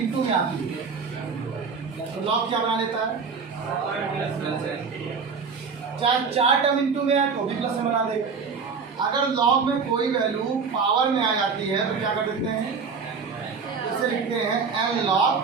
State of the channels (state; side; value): quieter; left; 5.3 dB